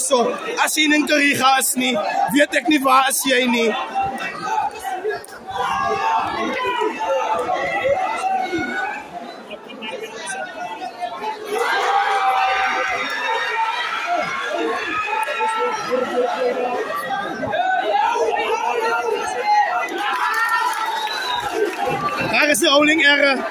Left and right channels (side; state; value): both; identical; correlation 1.00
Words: As jy in Kariga is nie, weet ek nie waar is jy nie. Daar is die holding error.